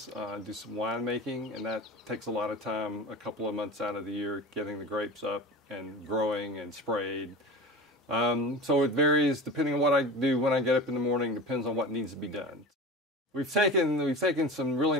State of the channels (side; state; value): both; normal; correlation 0.32